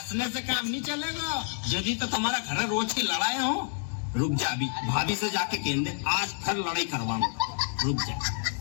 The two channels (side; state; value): right; silent; 59 dB below the other